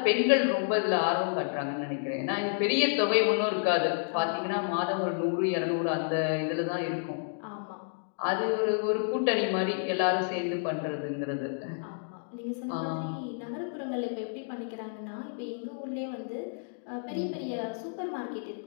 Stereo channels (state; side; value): silent; right; digital silence